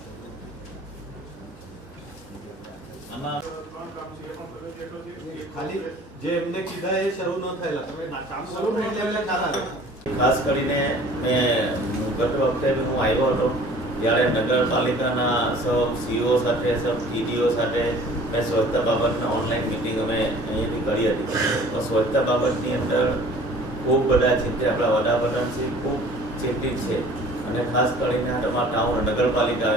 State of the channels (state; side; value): normal; both; correlation 0.49